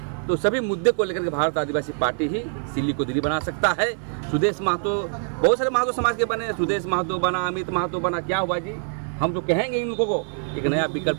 तो सभी मुद्दे को लेकर के भारत आदिवासी पार्टी ही सिल्ली को दिल्ली बना सकता है। सुदेश महतो, बहुत सारे महतो समाज के बने, सुदेश महतो बना, अमित महतो बना, क्या हुआ जी? हम तो कहेंगे इन लोगों को एक नया विकल्प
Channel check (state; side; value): silent; left; 63 dB below the other